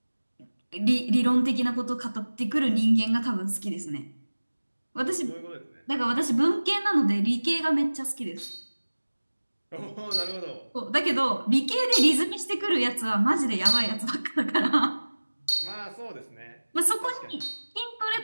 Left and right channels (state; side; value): inverted; both; correlation -1.00